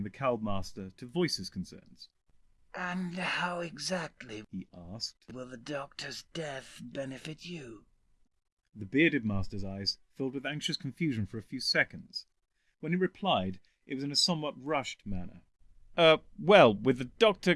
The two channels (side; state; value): both; identical; correlation 1.00